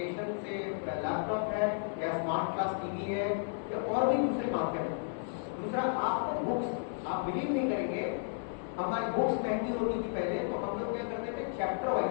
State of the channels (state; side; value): silent; right; 56 dB below the other